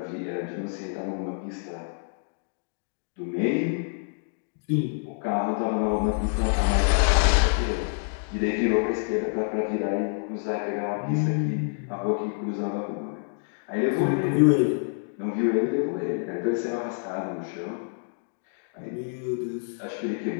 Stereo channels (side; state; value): right; silent; digital silence